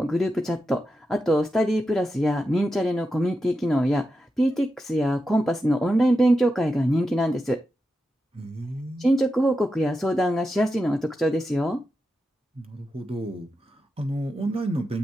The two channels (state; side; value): normal; both; correlation 0.89